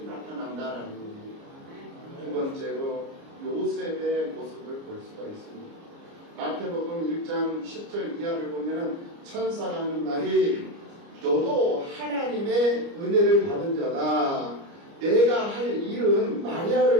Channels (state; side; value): late; left; 29 ms